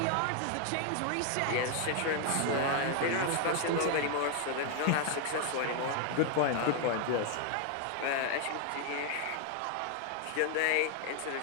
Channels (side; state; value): both; different; correlation 0.00